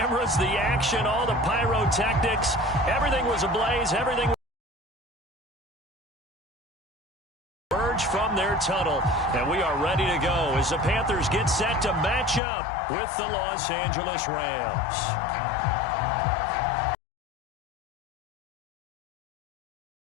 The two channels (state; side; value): drops out; right; at 12.4 s